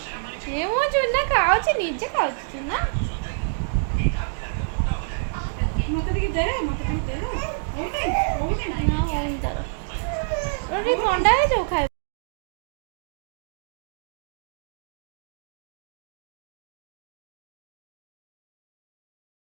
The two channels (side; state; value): left; silent; digital silence